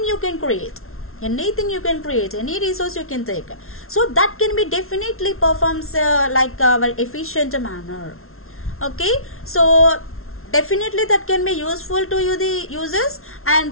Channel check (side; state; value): right; late; 0.62 ms